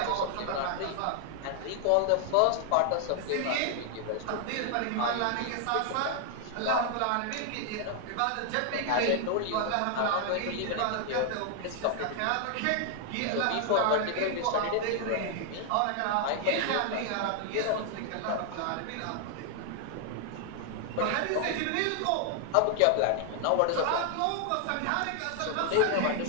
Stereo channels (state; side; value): different; both; correlation 0.00